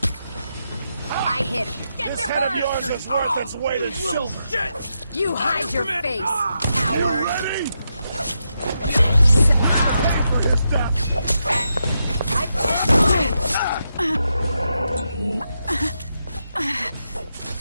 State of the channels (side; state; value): both; inverted; correlation -0.85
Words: I hit him. Get This to head of her! yours is worth its weight in silver! Shit! You hide your face, coward! Ready? For his death!